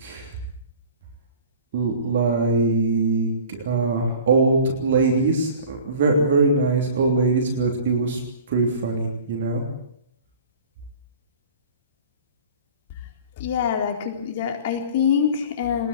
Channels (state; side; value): inverted; both; correlation -0.43